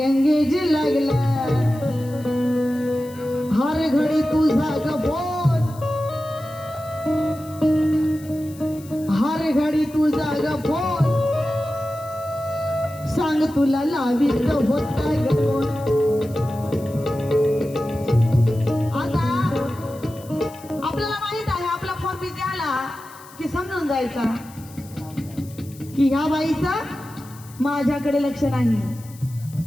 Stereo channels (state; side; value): noise; left; hiss, 21 dB below the sound